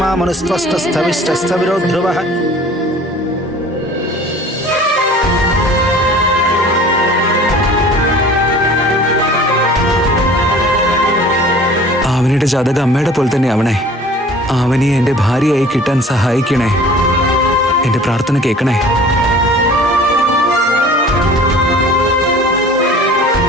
मनुस्त्वस्थस्थविष्टस्थविरो ध्रुवः. ആവനിയുടെ ജാതകം അമ്മയുടെ പോലെ തന്നെ ആവണേ. ആവനിയെ എന്റെ ഭാര്യയായി കിട്ടാൻ സഹായിക്കണേ. എന്റെ പ്രാർത്ഥന കേൾക്കണേ.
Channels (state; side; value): normal; both; correlation 0.46